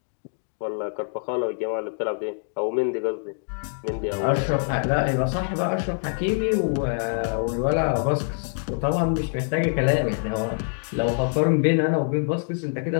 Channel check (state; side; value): silent; right; 62 dB below the other